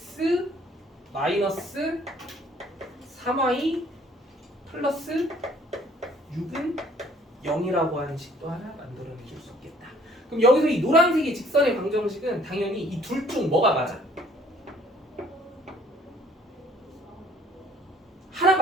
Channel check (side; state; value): both; normal; correlation 0.58